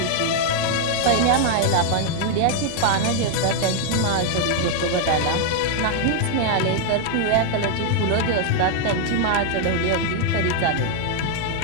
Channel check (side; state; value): both; different; correlation 0.00